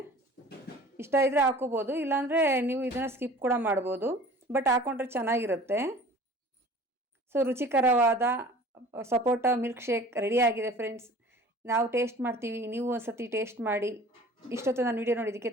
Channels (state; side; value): normal; both; correlation 0.45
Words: ಇಷ್ಟ ಇದ್ದರೆ ಹಾಕೋಬೋದು, ಇಲ್ಲಾಂದರೆ ನೀವು ಇದನ್ನು ಸ್ಕಿಪ್ ಕೂಡ ಮಾಡ್ಬೋದು, ಬಟ್ ಹಾಕ್ಕೊಂಡ್ರೆ ಚೆನ್ನಾಗಿರುತ್ತೆ. ಸೊ ರುಚಿಕರವಾದ ಸಪೋಟ ಮಿಲ್ಕ್ ಶೇಕ್ ರೆಡಿಯಾಗಿದೆ ಫ್ರೆಂಡ್ಸ್. ನಾವು ಟೇಸ್ಟ್ ಮಾಡ್ತೀವಿ, ನೀವು ಒಂದು ಸತಿ ಟೇಸ್ಟ್ ಮಾಡಿ. ಇಷ್ಟೊತ್ತು ನಾನು ವಿಡಿಯೋ ನೋಡಿದ್ದಕ್ಕೆ